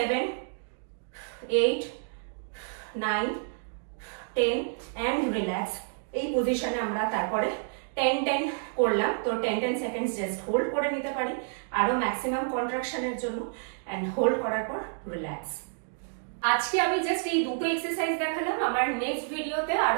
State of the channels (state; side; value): silent; left; digital silence